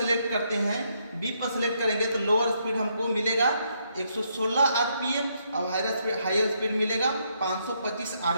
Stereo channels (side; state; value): both; inverted; correlation -0.75